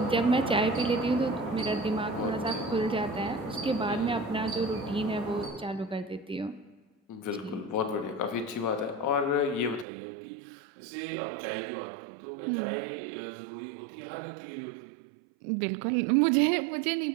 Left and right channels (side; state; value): left; drops out; at 9.9 s